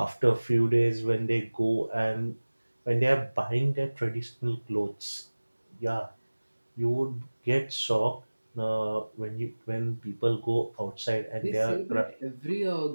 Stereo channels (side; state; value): both; inverted; correlation -1.00